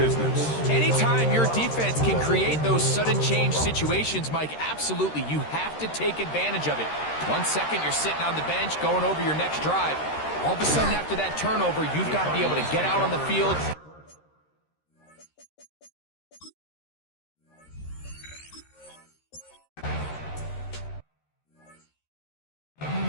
Anytime your defense can create those sudden change situations, Mike, absolutely, you have to take advantage of it. 1 second, you're sitting on the bench going over your next drive. All of a sudden, after that turnover, you've got to be able to get out on the field.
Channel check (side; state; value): right; late; 13 ms